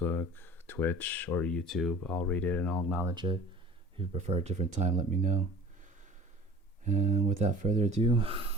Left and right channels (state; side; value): normal; both; correlation 0.45